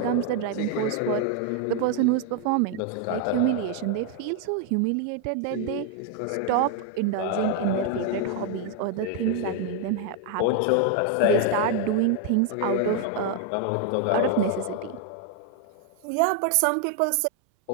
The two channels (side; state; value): both; different; correlation 0.00